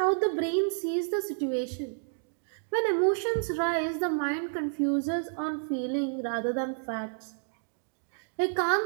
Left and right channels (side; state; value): left; silent; digital silence